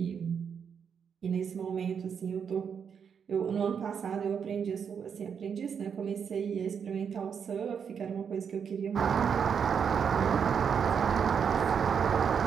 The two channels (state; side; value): quieter; left; 7.1 dB